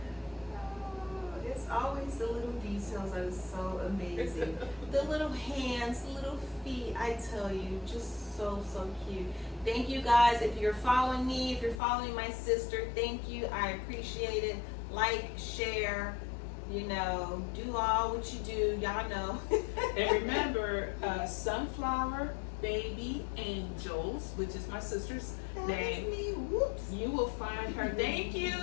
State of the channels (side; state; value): right; drops out; at 11.8 s